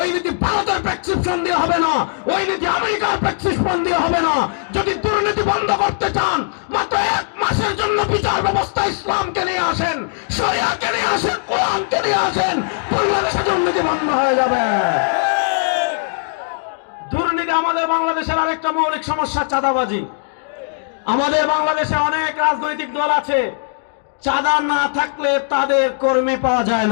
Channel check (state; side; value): silent; right; digital silence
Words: নীতি ভারতের প্রেসক্রিপশন দিয়ে হবে না, ওই নীতি আমেরিকার প্রেসক্রিপশন দিয়ে হবে না। যদি দুর্নীতি বন্ধ করতে চান, মাত্র 1 মাসের জন্য বিচার ব্যবস্থা ইসলামকে নিয়ে আসেন, শরিয়াকে নিয়ে আসেন, কোরআনকে নিয়ে আসেন, বাংলাদেশে দুর্নীতি বন্ধ হয়ে যাবে। দুর্নীতি আমাদের বাংলাদেশের আরেকটা মৌলিক সমস্যা, চাঁদাবাজি। আমাদের বাংলাদেশে অনেক রাজনৈতিক দল আছে, চাঁদা না থাকলে তাদের কর্মী পাওয়া যায়